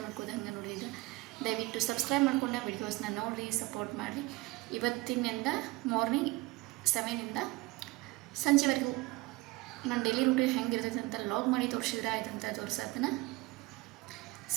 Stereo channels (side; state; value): left; quieter; 21.8 dB